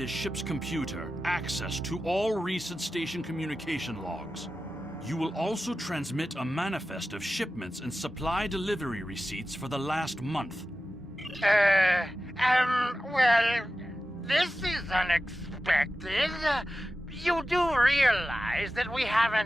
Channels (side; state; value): both; normal; correlation 0.93